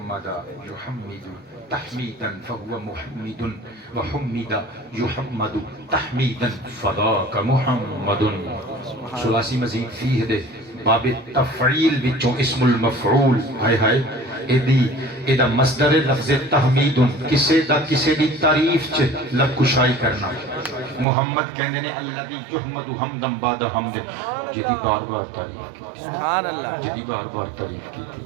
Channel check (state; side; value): drops out; left; at 21.1 s